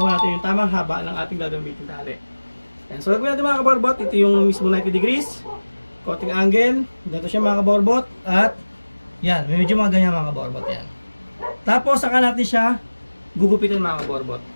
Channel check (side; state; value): both; inverted; correlation -1.00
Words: natin yung tamang haba ng ating gagamitin tali. Yan. So gagawin natin mga kaborbot, ito yung mismo 90 degrees, konting angle, dito siya mga kaborbot, at yan, medyo mga ganyan mga kaborbot yan. Tapos saka natin siya gugupitin mga kaborbot.